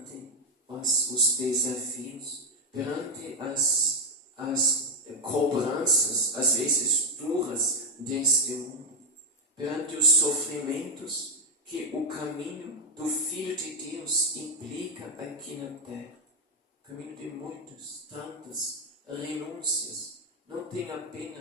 os desafios, perante as cobranças, às vezes duras, deste mundo, perante os sofrimentos que o caminho do Filho de Deus implica aqui na terra. Caminho de muitas, tantas renúncias. Não tem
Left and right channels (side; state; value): both; normal; correlation 0.07